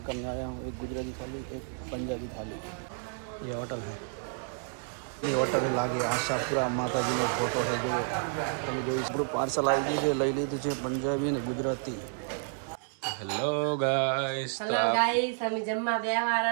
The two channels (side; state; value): left; silent; 57 dB below the other